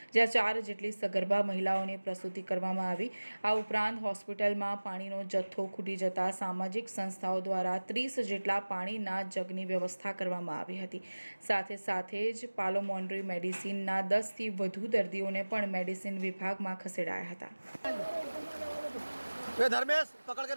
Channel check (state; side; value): inverted; both; correlation -1.00